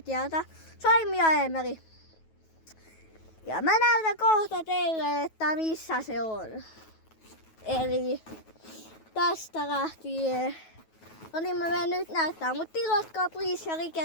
Saimi ja Eemeli. Ja mä näytän kohta teille, että missä se on. Eli tästä lähtien. No niin mä menen nyt näyttää, mutta tilatkaa please ja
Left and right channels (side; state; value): right; late; 9.3 ms